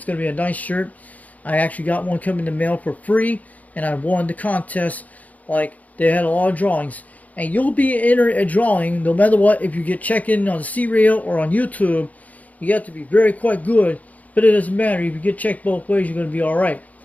going to be a nice shirt. I actually got one coming in the mail for free, and I won the contest. Like, they had a lot of drawings. And you'll be entered a drawing no matter what. If you get checked in on the C Radio or on YouTube, you have to be very quite good. But it doesn't matter. If you get checked both ways, you're going to be alright.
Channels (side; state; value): right; late; 0.075 ms